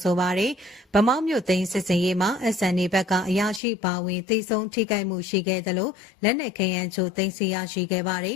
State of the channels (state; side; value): drops out; right; at 3.6 s